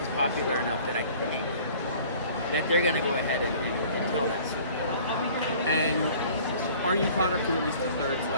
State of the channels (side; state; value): both; inverted; correlation -0.50